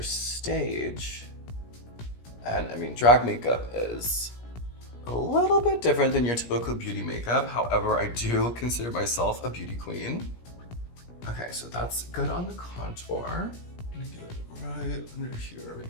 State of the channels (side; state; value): right; late; 17 ms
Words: stage. And I mean, drag makeup is a little bit different than your typical beauty makeup. However, I do consider myself a beauty queen. Okay, so that's good on the contour. I'm gonna get it right under here.